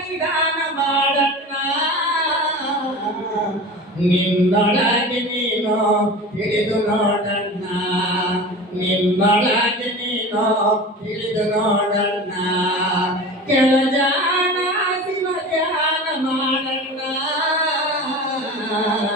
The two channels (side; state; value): both; normal; correlation 0.34